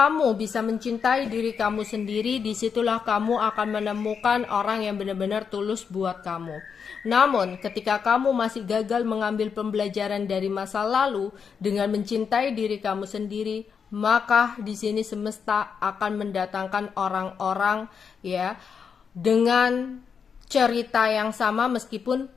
bisa mencintai diri kamu sendiri, disitulah kamu akan menemukan orang yang benar-benar tulus buat kamu. Namun, ketika kamu masih gagal mengambil pembelajaran dari masa lalu dengan mencintai diri kamu sendiri, maka di sini semesta akan mendatangkan orang-orang ya dengan cerita yang sama meskipun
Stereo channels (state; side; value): quieter; right; 6.4 dB